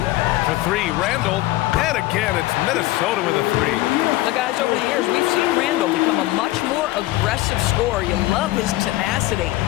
For 3, Randall. And again, it's Minnesota with a 3. The guys, over the years, we've seen Randall become a much more aggressive scorer. You love his tenacity.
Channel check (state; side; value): quieter; right; 17.6 dB